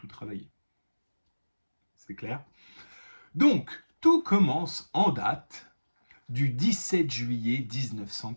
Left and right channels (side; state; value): both; inverted; correlation -1.00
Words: travaillé. C'est clair? Donc, tout commence en date du 17 juillet